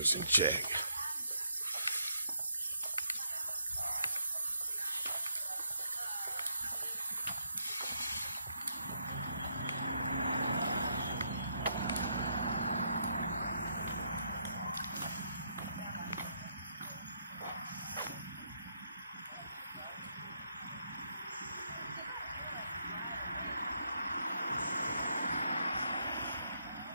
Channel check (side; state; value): both; inverted; correlation -0.76